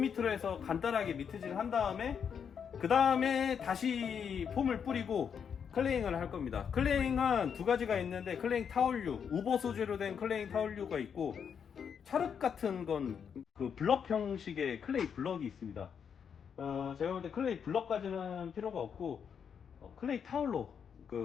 해서 간단하게 미트질 한 다음에, 그 다음에 다시 폼을 뿌리고 클레잉을 할 겁니다. 클레잉은 두 가지가 있는데, 클레잉 타올류, 우버 소재로 된 클레잉 타올류가 있고, 찰흙 같은 건 그 블럭 형식의 클레이 블럭이 있습니다. 제가 볼 때 클레이 블럭까지는 필요가 없고 클레이 타올로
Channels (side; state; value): right; quieter; 7.3 dB